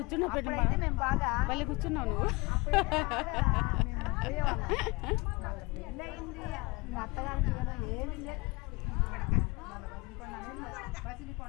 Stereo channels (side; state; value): right; quieter; 25.0 dB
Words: పెట్టు మేము బాగా పల్లె కూర్చున్నావు నువ్వు. పెళ్ళయింది మా అత్తగారికి ఏమి లేదు.